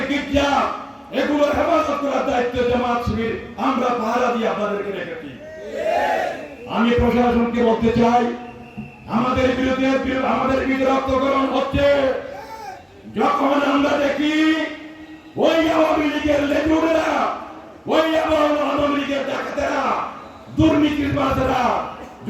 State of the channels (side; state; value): both; identical; correlation 1.00